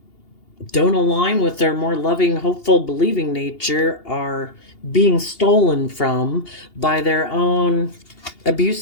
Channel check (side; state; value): right; late; 2.8 ms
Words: don't align with their more loving, hopeful, believing nature are being stolen from by their own